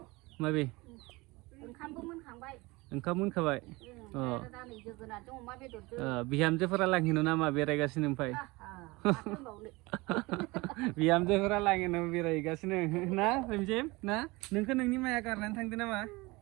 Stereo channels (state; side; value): quieter; left; 23.2 dB